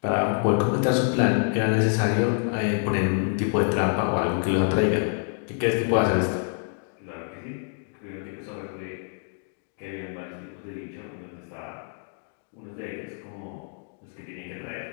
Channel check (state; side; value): silent; right; 56 dB below the other